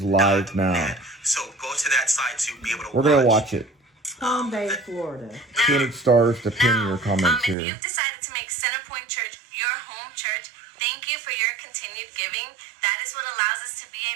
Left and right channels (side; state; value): left; drops out; at 7.6 s